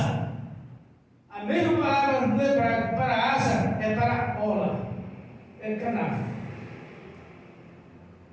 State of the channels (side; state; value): both; identical; correlation 1.00